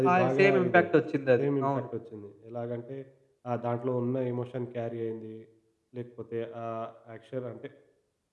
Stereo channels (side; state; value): both; identical; correlation 1.00